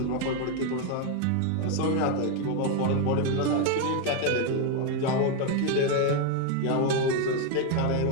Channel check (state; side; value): different; both; correlation 0.02